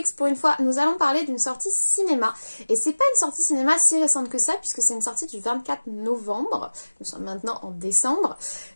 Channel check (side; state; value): both; inverted; correlation -1.00